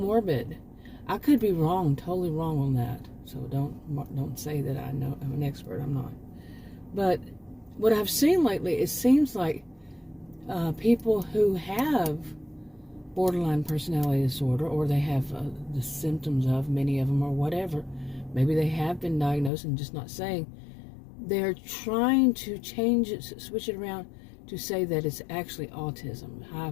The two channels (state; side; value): drops out; right; at 19.5 s